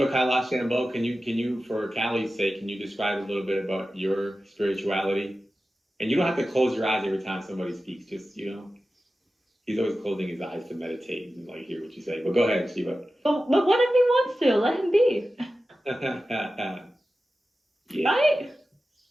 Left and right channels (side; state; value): both; normal; correlation 0.94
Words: Kailash Shambho, can you for Callie's sake, can you describe a little bit about your spirituality? And you don't have to close your eyes every time somebody speaks. Just he's always closing his eyes to meditate and like hear what you say. But go ahead, Shiva. But what if he wants to? Let him be. Yeah, Right?